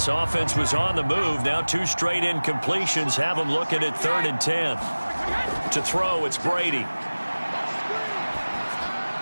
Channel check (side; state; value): both; inverted; correlation -1.00